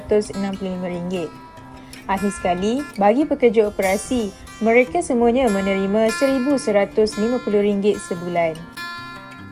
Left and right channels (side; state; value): both; identical; correlation 1.00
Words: Akhir sekali, bagi pekerja operasi, mereka semuanya menerima RM1,150 sebulan.